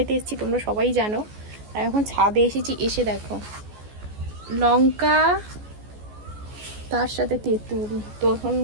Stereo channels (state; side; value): late; left; 14 ms